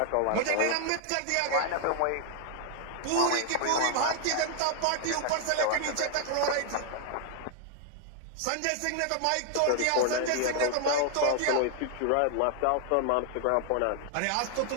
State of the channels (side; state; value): both; different; correlation 0.00